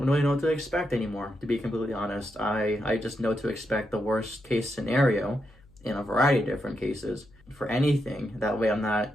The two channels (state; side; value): noise; left; hum, 27 dB below the sound